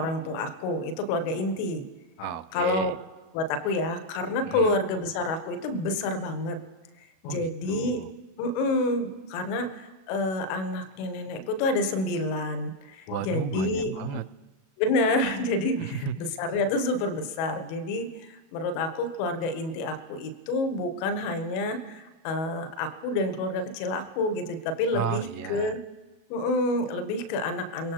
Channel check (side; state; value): right; late; 37 ms